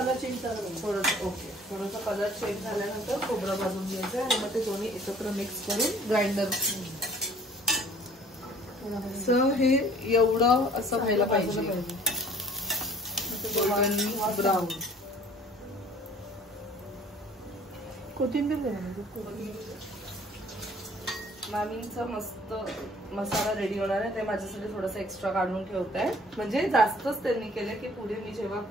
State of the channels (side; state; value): both; normal; correlation 0.53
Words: चेंज करायचं थोडस. ओके, थोडस कलर चेंज झाल्यानंतर खोबरं भाजून घ्यायचं आणि मग ते दोन्ही एकत्र मिक्स करून ग्राइंडर. हे एवढं असं व्हायला पाहिजे ब्राऊन. कोथिंबीर मामींचा मस्त मसाला रेडी होणार आहे. ते माझ्यासाठी थोडस एक्स्ट्रा काढून ठेवत आहे, म्हणजे जास्तच त्यांनी केलं की पुढे मी जेव्हा